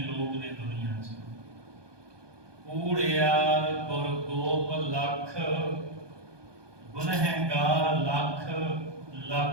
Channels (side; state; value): left; late; 1.2 ms